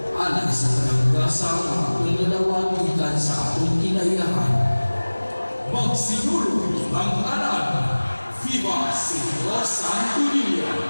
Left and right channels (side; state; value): both; inverted; correlation -1.00